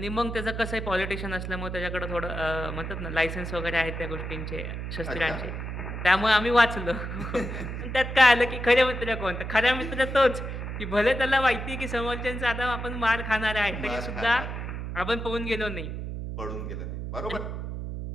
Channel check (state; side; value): noise; right; hum, 6 dB below the sound